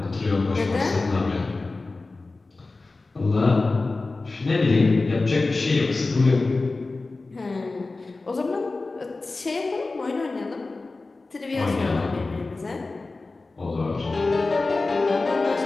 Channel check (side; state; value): right; quieter; 3.5 dB